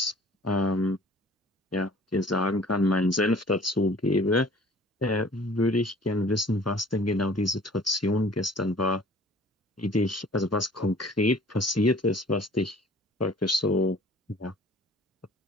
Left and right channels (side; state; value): both; normal; correlation 0.50